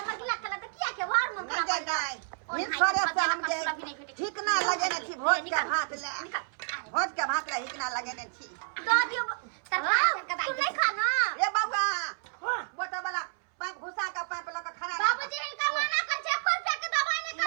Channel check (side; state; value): left; silent; 58 dB below the other